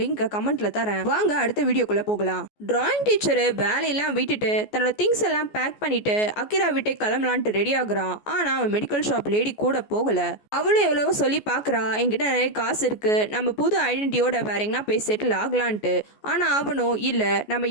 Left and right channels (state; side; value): late; right; 14 ms